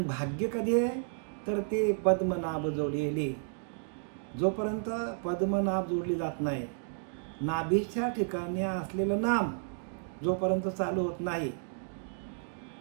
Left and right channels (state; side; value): silent; left; digital silence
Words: भाग्य कधी आहे तर ते पद्मनाभ जोडलेली. जोपर्यंत पद्मनाभ जोडली जात नाही, नाभीच्या ठिकाणी असलेलं नाम जोपर्यंत चालू होत नाही